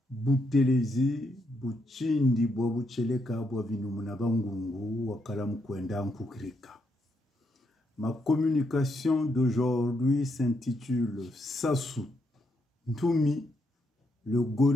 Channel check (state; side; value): normal; both; correlation 0.78